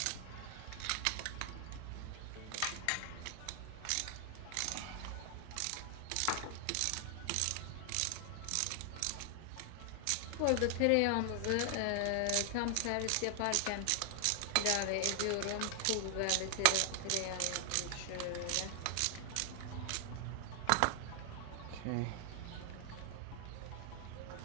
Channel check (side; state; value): both; different; correlation 0.00